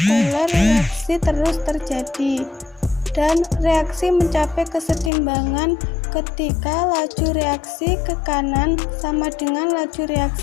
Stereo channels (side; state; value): right; drops out; at 5.1 s